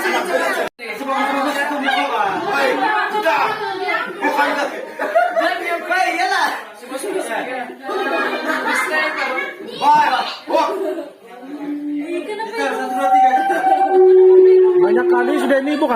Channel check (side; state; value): both; identical; correlation 1.00